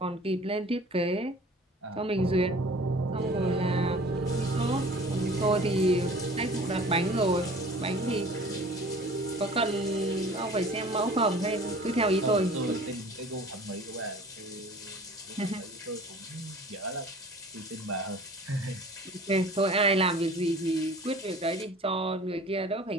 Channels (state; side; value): normal; both; correlation 0.46